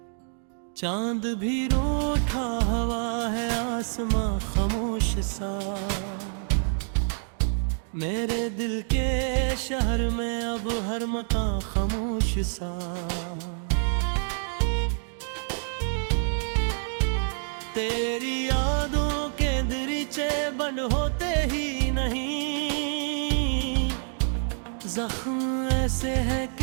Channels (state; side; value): silent; left; 60 dB below the other